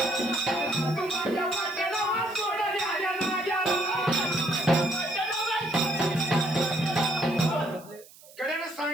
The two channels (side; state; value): right; noise; hiss, 22 dB below the sound